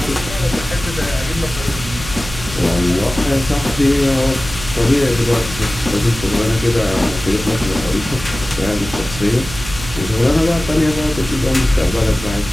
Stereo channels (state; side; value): noise; right; hum, 11 dB below the sound